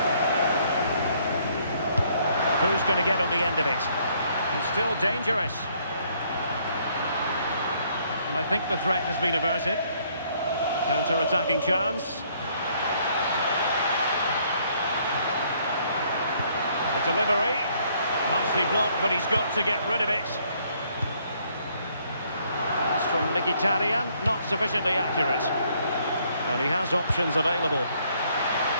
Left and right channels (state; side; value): inverted; both; correlation -0.66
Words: Who's going to get on the end of it? It's still dangerous. And I think the threat has been averted. Counter-attacking chance. The delivery. Nicely blocked, but he's got to get rid of it. Pass from Mkhitaryan, not sufficiently accurate. And he has options available.